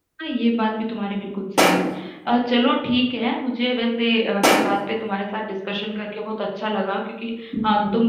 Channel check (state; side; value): identical; both; correlation 1.00